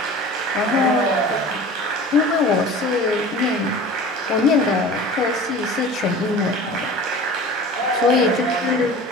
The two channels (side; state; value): both; normal; correlation 0.39